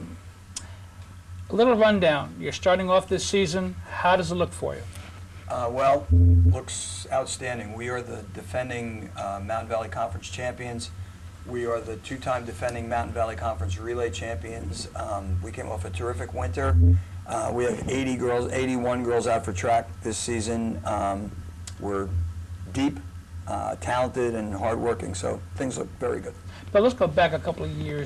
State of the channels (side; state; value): both; identical; correlation 1.00